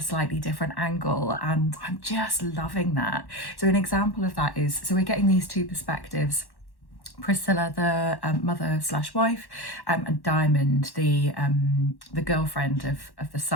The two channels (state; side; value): late; right; 1.1 ms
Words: slightly different angle, and I'm just loving that. So an example of that is, so we're getting these two perspectives: Priscilla, the mother slash wife, and Diamond, the girlfriend of the